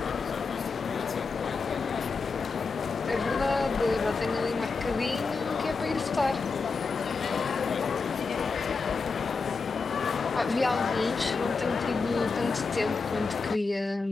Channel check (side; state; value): right; quieter; 4.5 dB